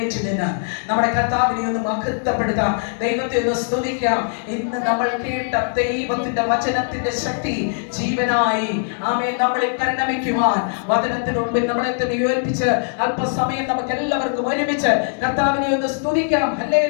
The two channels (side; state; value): right; silent; digital silence